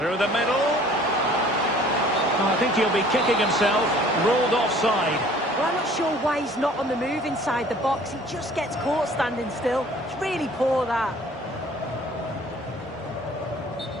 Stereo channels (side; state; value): both; normal; correlation 0.52